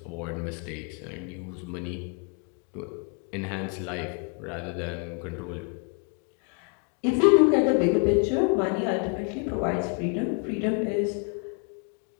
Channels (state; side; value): quieter; right; 37.8 dB